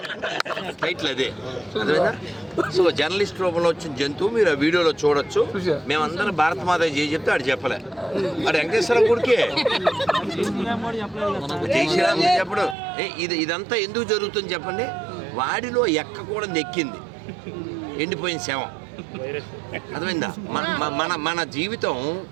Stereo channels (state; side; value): drops out; left; at 12.8 s